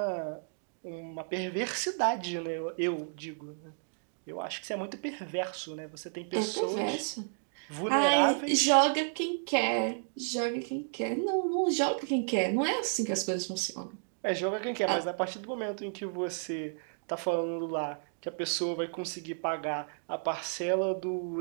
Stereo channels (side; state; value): left; silent; digital silence